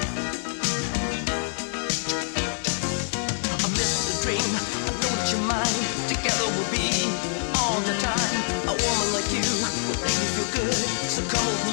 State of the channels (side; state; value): right; silent; digital silence